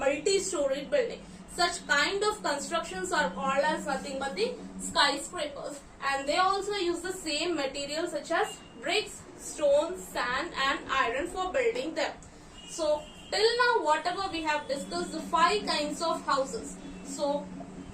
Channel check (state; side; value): identical; both; correlation 1.00